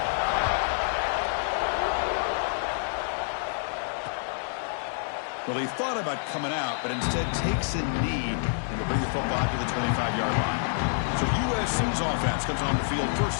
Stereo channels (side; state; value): right; silent; digital silence